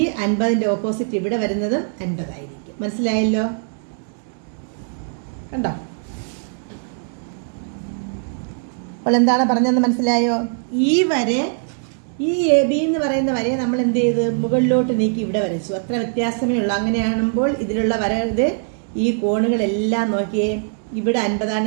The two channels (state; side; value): silent; left; digital silence